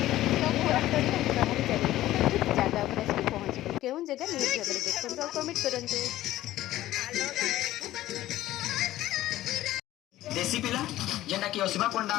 ତ ମୁଁ ରାସ୍ତାରେ ଆମେ ବାହାରି ଚାଲିଲୁ, ତ ଠିକ୍ ଜାଗା ଉପରେ ଆସିକି ପହଞ୍ଚିଲୁ। କେଉଁ ଜାଗା ନିହାତି ଭାବରେ ଦେଖନ୍ତୁ ଆଉ କମେଣ୍ଟ କରନ୍ତୁ। देसी पिला जेना कि असीमा पंडा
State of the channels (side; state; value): right; quieter; 14.9 dB